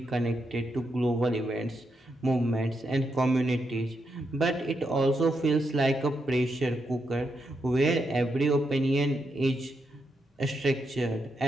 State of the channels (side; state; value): both; normal; correlation 0.82